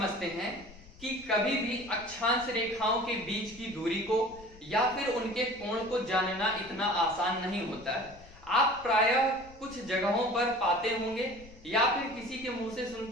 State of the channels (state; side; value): noise; left; rumble, 21 dB below the sound